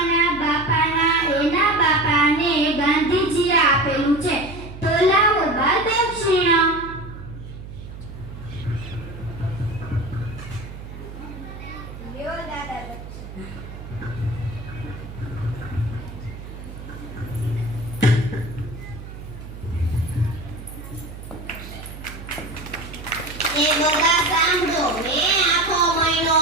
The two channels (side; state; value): right; noise; hum, 12 dB below the sound